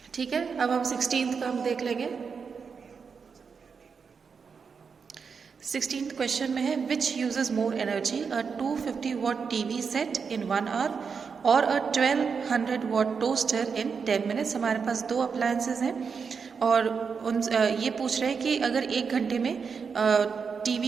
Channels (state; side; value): quieter; left; 5.8 dB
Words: ठीक है, अब हम 16th का हम देख लेंगे। 16th क्वेश्चन में है which uses more energy, a 250 watt TV set in 1 hour और a 1200 watt toaster in 10 minutes. हमारे पास 2 अप्लायंसेज हैं और ये पूछ रहे हैं कि अगर 1 घंटे में